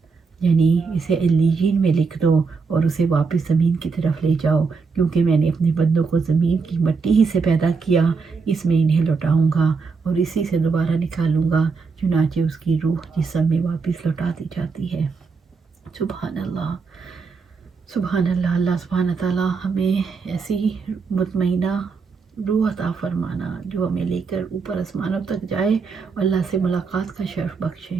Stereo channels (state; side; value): quieter; left; 4.9 dB